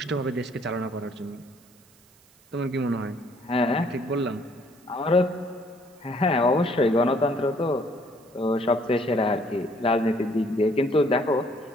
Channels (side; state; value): right; noise; hiss, 29 dB below the sound